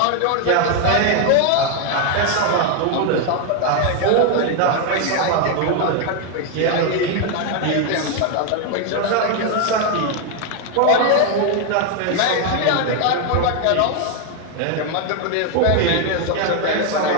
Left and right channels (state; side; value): different; both; correlation 0.01